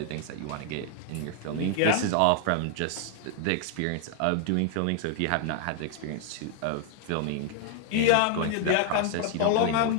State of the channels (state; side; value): different; both; correlation 0.00